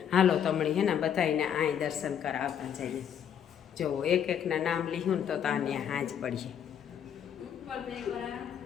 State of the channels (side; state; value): right; quieter; 8.9 dB